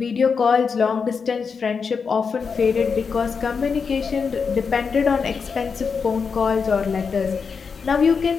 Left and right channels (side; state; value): right; quieter; 5.6 dB